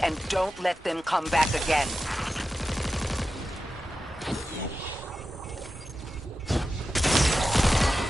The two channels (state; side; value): normal; both; correlation 0.92